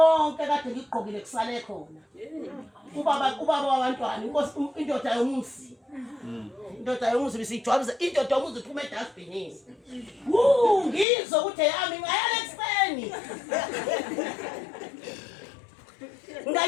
kade ngigqokile kusale khona. Ubaba wabantwana inkosi indoda yomuzi. Indoda yomuzi bisijwabuza indoda yomuzi iphuma edustbinini. Ngizwe ukuthi yami ngayala ekseni.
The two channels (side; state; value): right; drops out; at 11.1 s